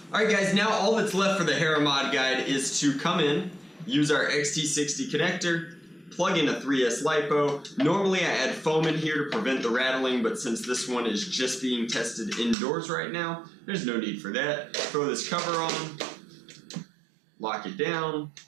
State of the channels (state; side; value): drops out; left; at 12.6 s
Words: Alright guys, now all that's left for the Hera mod guide is to come in, use our XT60 connector, plug in a 3S LiPo. Normally I add foam in here to prevent the rattling, but since this one is just being tested indoors right now, there's no need for that. Throw this cover on, lock it down,